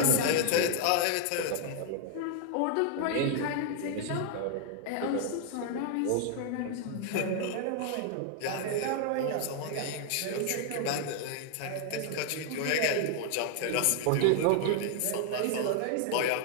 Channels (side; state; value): both; different; correlation 0.00